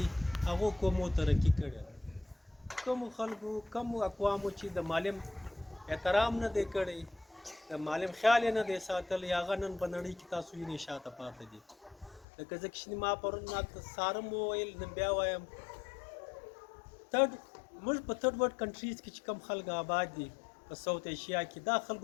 هغو قومو ترقي کړی. کومو خلکو کومو اقوامو چې د معلم احترام نه دی کړی، د معلم خیال یې نه دی ساتلی، هغه نن په نړۍ کې تاسو وینئ شاته پاتې دي. لکه ځکه چې ما پرون سارم وویل، نن بیا وایم، موږ په تھرډ ورلډ کنټریز کې چې کوم خلک آباد دي په ساوت ایشیا کې، دا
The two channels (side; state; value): right; drops out; at 12.2 s